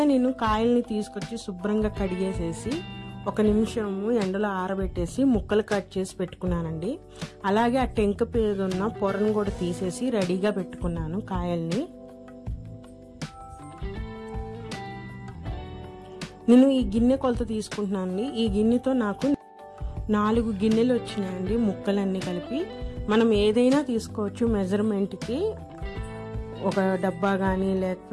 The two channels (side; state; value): both; identical; correlation 1.00